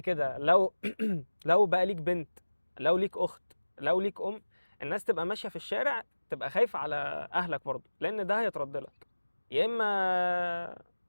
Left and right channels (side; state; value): both; inverted; correlation -1.00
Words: لو لو بقى ليك بنت، لو ليك اخت، لو ليك ام، الناس تبقى ماشيه في الشارع تبقى خايفه على اهلك برضه، لان ده هيترد لك يا اما